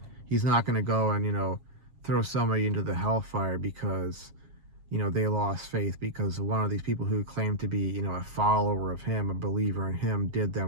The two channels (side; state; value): left; late; 7.3 ms